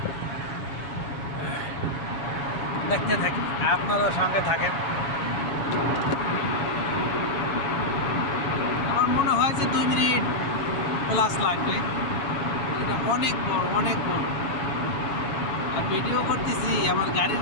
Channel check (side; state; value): right; late; 7.2 ms